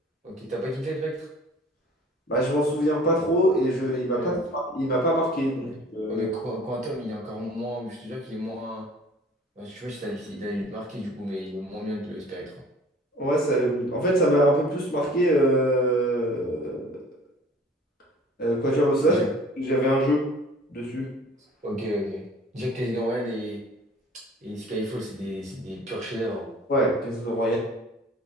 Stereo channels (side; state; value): both; normal; correlation 0.48